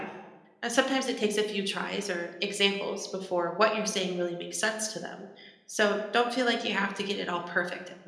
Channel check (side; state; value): both; identical; correlation 1.00